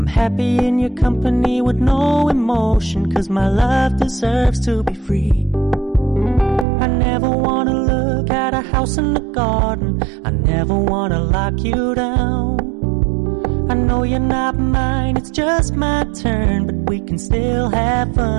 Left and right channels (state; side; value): drops out; left; at 6.7 s